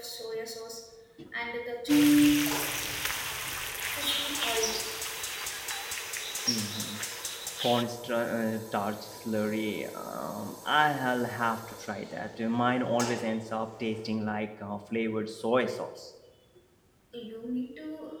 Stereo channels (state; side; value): identical; both; correlation 1.00